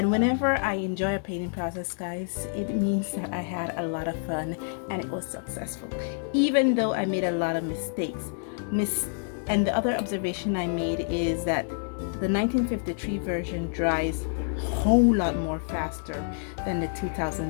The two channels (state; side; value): silent; right; digital silence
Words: whenever I enjoy a painting process, guys, it means that I had a lot of fun and it was successful. Even though I made a lot of mistakes. And the other observation I made is that the 1953 version dries a whole lot more faster than the